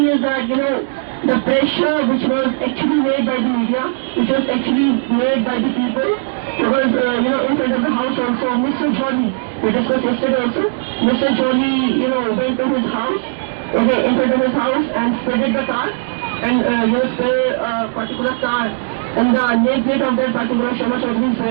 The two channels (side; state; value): left; silent; digital silence